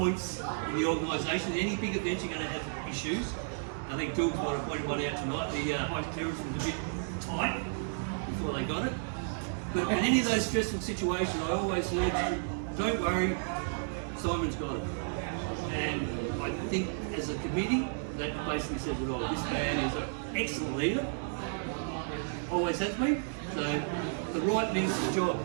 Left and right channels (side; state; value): left; silent; digital silence